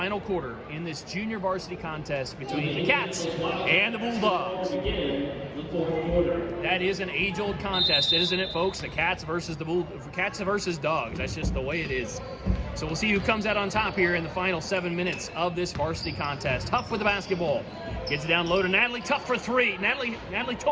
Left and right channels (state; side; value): identical; both; correlation 1.00